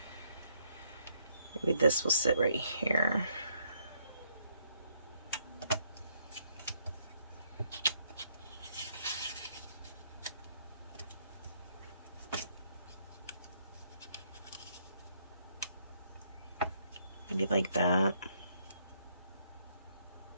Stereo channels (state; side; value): inverted; both; correlation -0.71